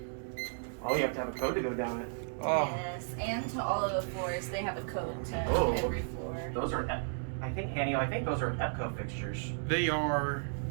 Oh, you have to have a code to go down it. Oh. Yes, and to all of the floors, they have a code to every floor. Those are, I think, Hanny, I think those are EPCO fixtures. They are.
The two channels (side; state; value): left; silent; digital silence